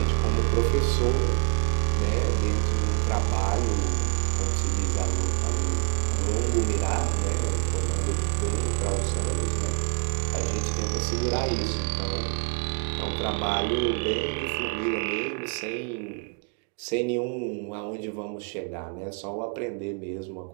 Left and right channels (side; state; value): left; quieter; 38.9 dB